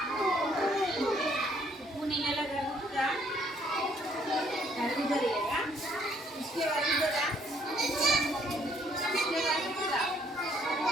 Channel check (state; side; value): normal; both; correlation 0.65